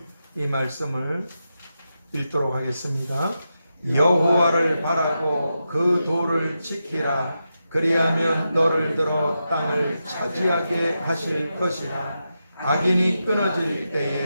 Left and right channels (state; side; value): inverted; both; correlation -0.88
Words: 이 말씀을 읽도록 하겠습니다. 여호와를 바라고 그 도를 지키라. 그리하면 너를 들어 땅을 차지하게 하실 것이라. 악인이 끊어질